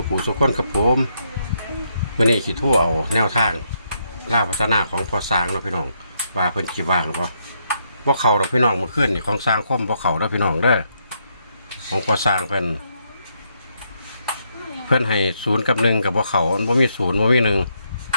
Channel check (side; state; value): both; inverted; correlation -0.76